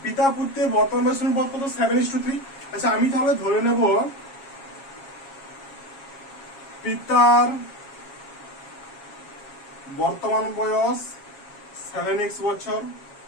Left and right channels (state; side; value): late; right; 7.3 ms